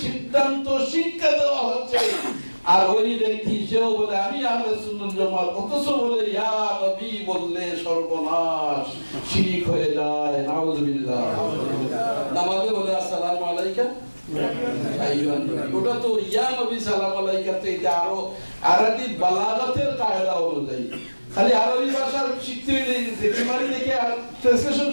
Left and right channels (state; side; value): inverted; both; correlation -1.00